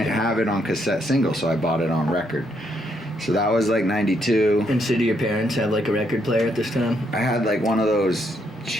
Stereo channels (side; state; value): both; normal; correlation 0.75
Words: have it on cassette single, so I bought it on record. So that was like 92. And so do your parents have like a record player at this time? I had like one of those